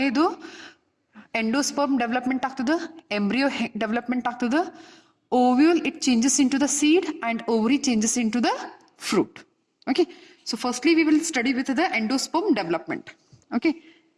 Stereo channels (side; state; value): both; identical; correlation 1.00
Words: endosperm development ಆಗ್ತದೆ, embryo development ಆಗ್ತದೆ, ovule it changes into the seed and ovary changes into the fruit. Okay, so firstly we will study with the endosperm development. Okay,